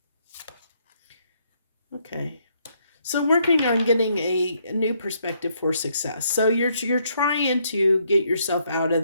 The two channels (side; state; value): both; inverted; correlation -0.72